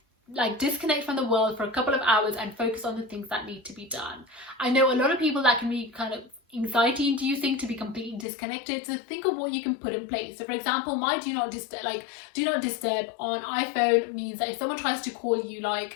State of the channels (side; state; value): right; drops out; at 8.2 s